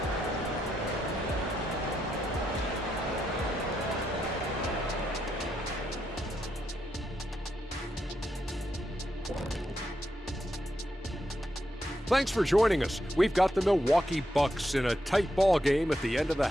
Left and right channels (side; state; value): both; normal; correlation 0.82